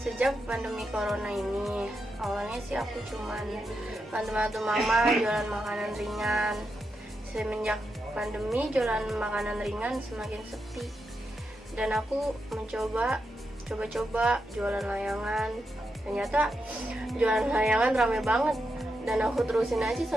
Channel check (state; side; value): normal; both; correlation 0.85